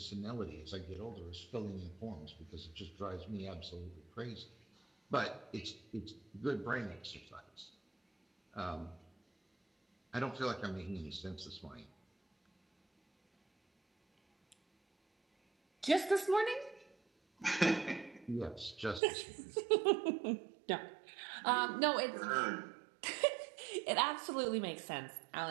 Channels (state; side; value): drops out; left; at 19.0 s